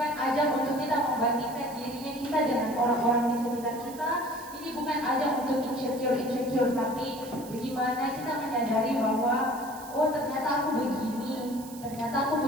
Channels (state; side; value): noise; right; hiss, 17 dB below the sound